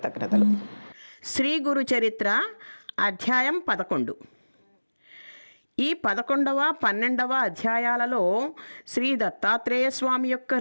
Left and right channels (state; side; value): inverted; both; correlation -1.00